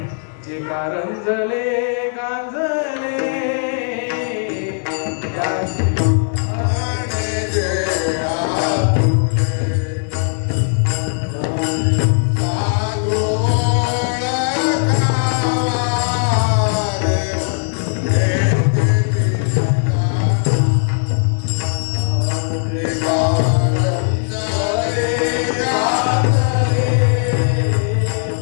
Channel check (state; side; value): silent; right; 67 dB below the other